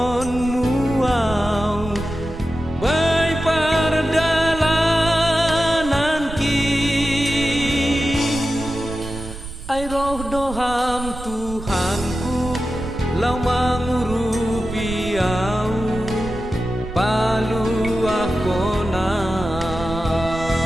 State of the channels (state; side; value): noise; right; rumble, 11 dB below the sound